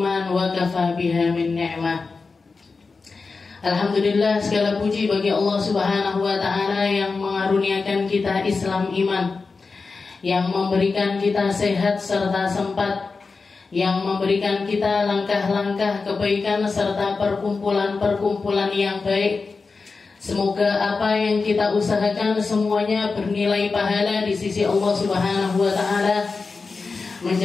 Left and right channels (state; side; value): quieter; right; 4.4 dB